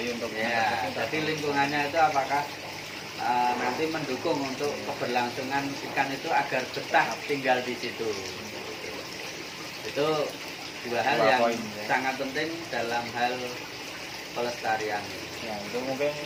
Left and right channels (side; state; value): both; identical; correlation 1.00